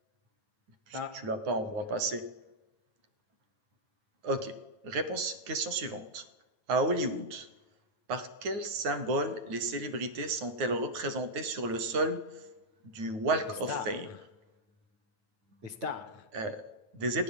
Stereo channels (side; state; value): left; late; 9.1 ms